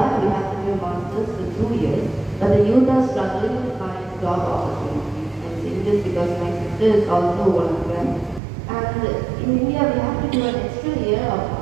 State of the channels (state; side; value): drops out; left; at 8.4 s